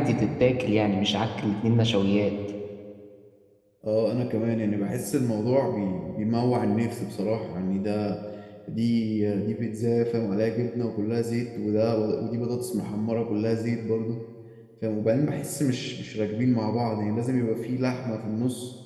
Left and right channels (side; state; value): both; identical; correlation 1.00